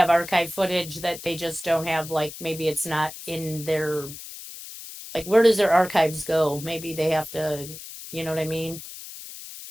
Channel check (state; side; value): noise; left; hiss, 13 dB below the sound